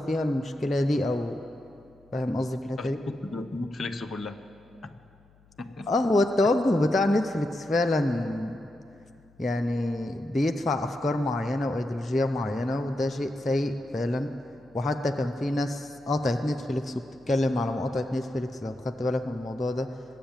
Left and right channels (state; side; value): noise; left; hum, 29 dB below the sound